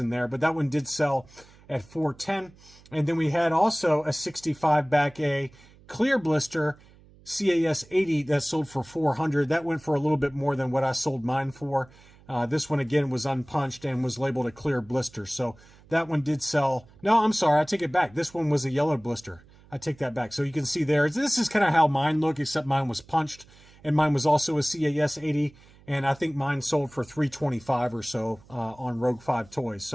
there. But that one did sell at $410. And then we had also a 65 back A clear blister CAS 80 that sold for $400. That went for a little bit more than what I sold mine for. This one, again, was unpunched and was labeled a clear blister. So that one did sell. No, I'm sorry. I take it back. This one was a yellow blister. I take that back. So you can see there, this is kind of how mine look, except mine was punched. And mine was also a CAS 80. And I think mine sold for $325 or so on Rogue 5 Toys.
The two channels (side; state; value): right; noise; hum, 26 dB below the sound